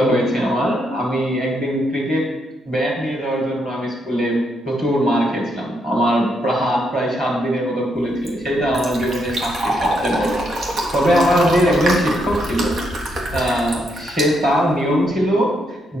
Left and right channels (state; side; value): normal; both; correlation 0.77